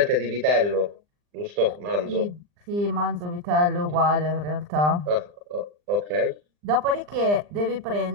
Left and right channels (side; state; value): left; late; 39 ms